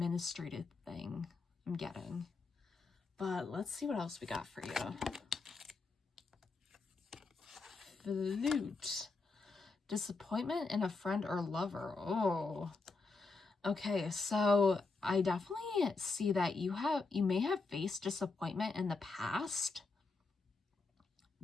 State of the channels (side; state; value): right; quieter; 3.9 dB